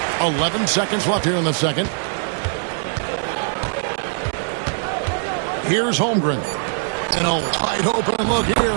11 seconds left here in the second. Here's Holmgren. And a wide open look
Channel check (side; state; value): left; silent; digital silence